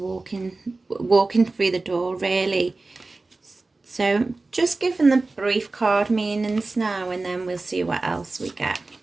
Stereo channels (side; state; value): left; quieter; 3.4 dB